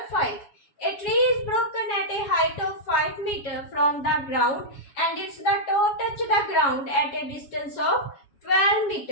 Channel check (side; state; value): right; late; 7.2 ms